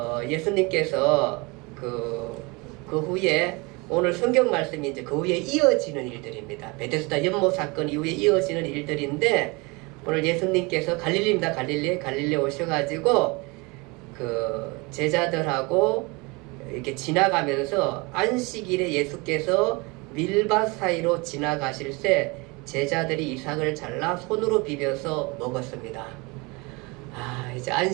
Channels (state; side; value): quieter; left; 26.8 dB